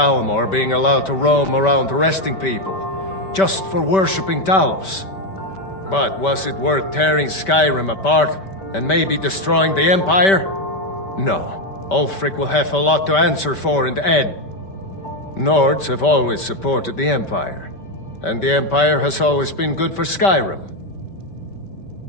being allowed to roam around arresting people. just for worshipping Talos. But was it worth tearing Skyrim apart and maybe destroying the Empire? No. Ulfric will have a lot to answer for in the end. Nords have always supported the Empire, and the Empire has always been good for Skyrim.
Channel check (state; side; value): late; right; 5.2 ms